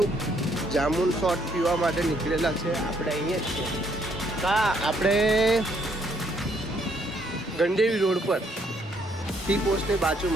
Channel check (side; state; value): both; normal; correlation 0.69